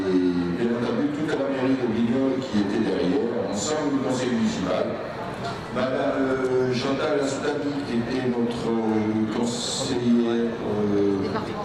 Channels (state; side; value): identical; both; correlation 1.00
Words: bien entendu toute la mairie de Brignoles qui était derrière, ensemble du conseil municipal. Madame Chantal Astoumi, qui était notre conseillère